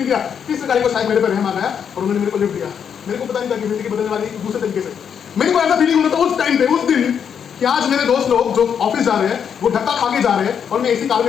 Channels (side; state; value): right; quieter; 7.7 dB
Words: दिया, तीसरी गाड़ी को शायद मेरे पर रहम आ गया और उन्होंने मेरे को लिफ्ट दिया। मेरे को पता नहीं था कि जिंदगी बदलने वाली दूसरे तरीके से। मेरे को ऐसा फीलिंग होता था उस टाइम पे, उस दिन, कि आज मेरे दोस्त लोग जो ऑफिस जा रहे हैं वो धक्का खा के जा रहे हैं और मैं एसी कार